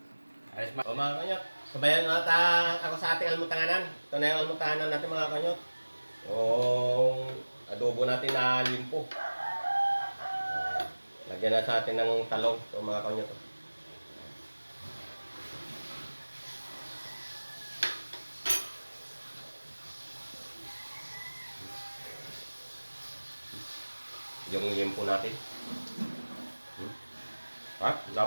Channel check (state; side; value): inverted; both; correlation -1.00